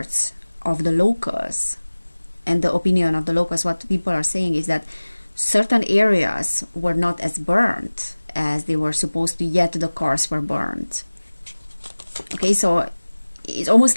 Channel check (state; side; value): inverted; both; correlation -1.00